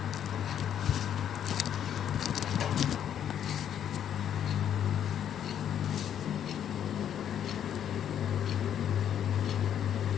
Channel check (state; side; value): quieter; right; 9.6 dB